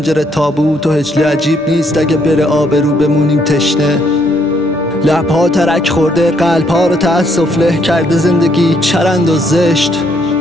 تابوت و هجله عجیب نیست اگه بره آبرو بمونیم تشنه. لبها ترک خورده، قلبها رو تأسف له کرده زندگی چرند و زشت.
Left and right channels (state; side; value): normal; both; correlation 0.70